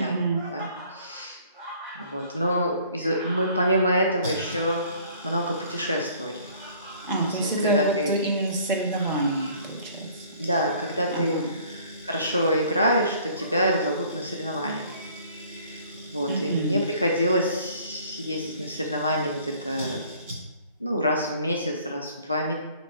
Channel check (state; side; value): inverted; both; correlation -0.55